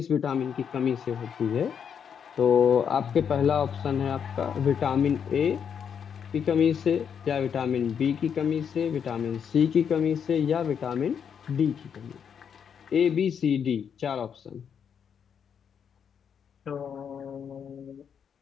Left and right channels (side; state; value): right; quieter; 7.5 dB